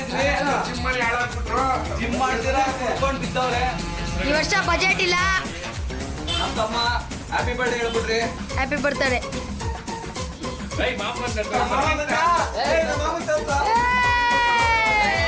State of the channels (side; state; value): both; identical; correlation 1.00